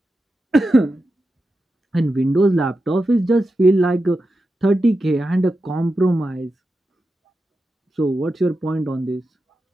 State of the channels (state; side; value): normal; both; correlation 0.90